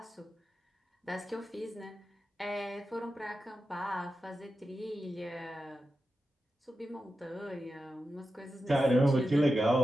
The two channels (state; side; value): normal; both; correlation 0.91